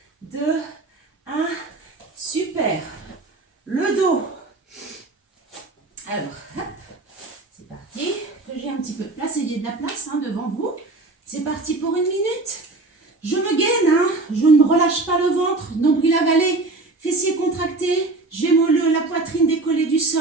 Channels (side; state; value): left; quieter; 3.2 dB